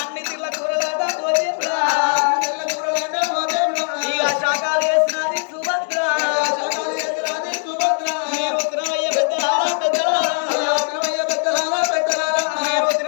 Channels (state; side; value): silent; right; 66 dB below the other